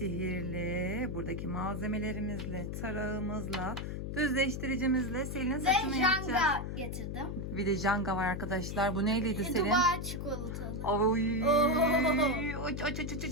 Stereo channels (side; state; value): left; noise; hum, 5 dB below the sound